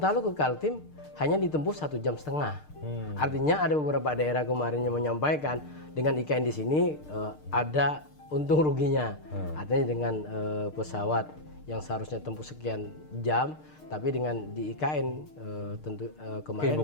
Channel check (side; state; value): right; late; 6.6 ms